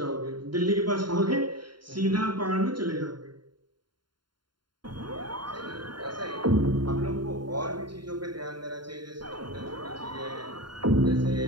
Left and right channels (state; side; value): late; left; 0.72 ms